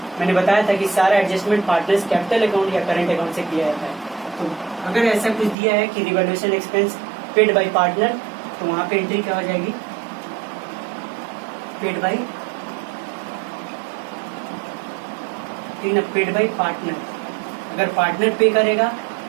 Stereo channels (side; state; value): left; drops out; at 5.6 s